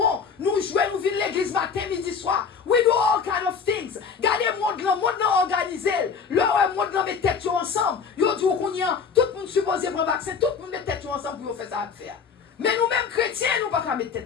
nous jouons, nous vivons l'église matin, midi, soir. We do all kind of things. Gardez le monde là organisé. Le monde là met tête ensemble. Yo dit qu'on y a, tout le monde supposé prendre vaccin, tout le monde met tête ensemble pour faire ça à faire. Mais nous-mêmes chrétiens, nous ne pouvons pas mettre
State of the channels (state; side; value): quieter; right; 6.0 dB